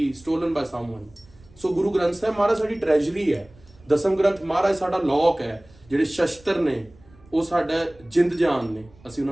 stolen by someone. So Guru Granth Sahib ਮਹਾਰਾਜ ਸਾਡੀ ਟ੍ਰੈਜਰੀ ਹੈ, ਦਸਮ ਗ੍ਰੰਥ ਮਹਾਰਾਜ ਸਾਡਾ ਲੋਕ ਹੈ। ਜਿਹੜੇ ਸ਼ਸਤਰ ਨੇ ਉਹ ਸਾਡਾ ਜਿੰਦ ਜਾਨ ਨੇ, ਅਸੀਂ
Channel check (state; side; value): noise; right; rumble, 27 dB below the sound